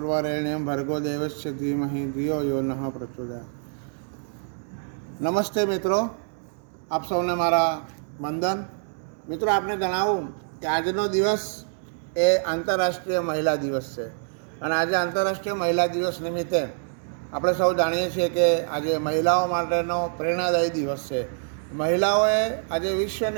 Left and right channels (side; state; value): left; silent; digital silence